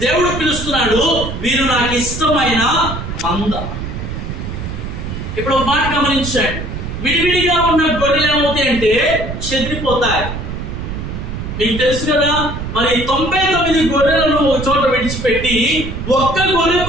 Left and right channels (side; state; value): right; noise; rumble, 6 dB below the sound